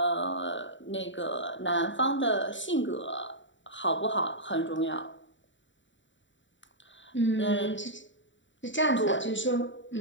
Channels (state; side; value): late; right; 0.54 ms